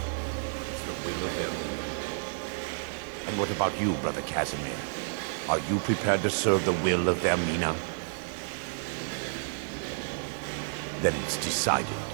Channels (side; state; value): left; silent; digital silence